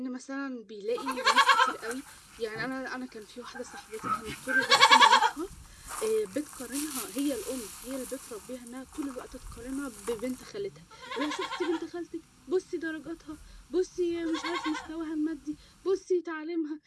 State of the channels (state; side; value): identical; both; correlation 1.00